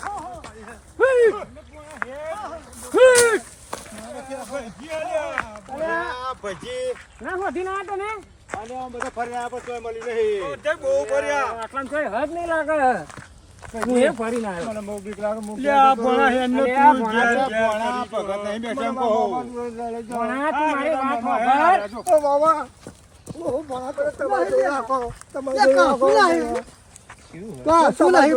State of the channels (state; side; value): identical; both; correlation 1.00